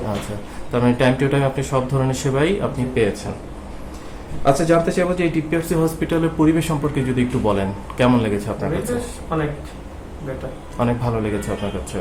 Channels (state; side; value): identical; both; correlation 1.00